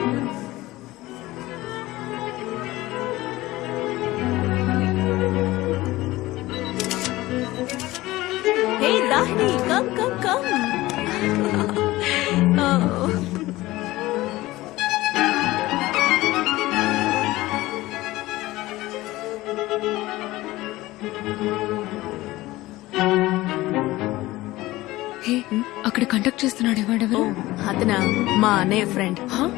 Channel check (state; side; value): quieter; right; 18.2 dB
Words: Hey Dahni, come. Oh. చెప్తున్నాడు వాడెవరు? అతనా మా అన్నయ్య ఫ్రెండ్. హా?